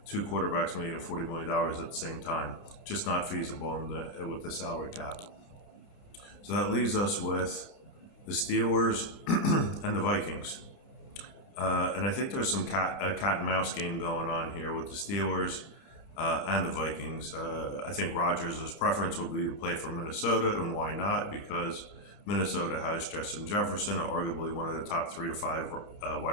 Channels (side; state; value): right; late; 29 ms